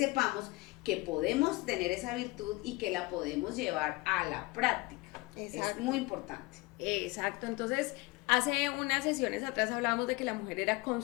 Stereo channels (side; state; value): right; quieter; 23.0 dB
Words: que podemos tener esa virtud y que la podemos llevar a la práctica. Exacto. Es muy importante. Exacto. Entonces, hace unas sesiones atrás hablábamos de que la mujer era